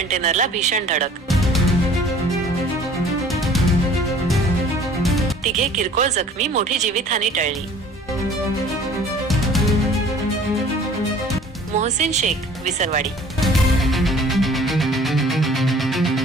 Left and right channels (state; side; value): normal; both; correlation 0.50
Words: भीषण धडक. तिघे किरकोळ जखमी, मोठी जीवितहानी टळली. मोहसिन शेख, विसरवाडी.